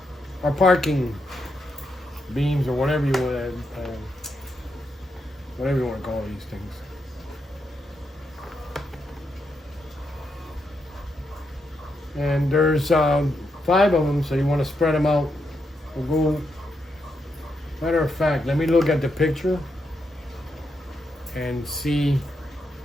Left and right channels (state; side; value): normal; both; correlation 0.82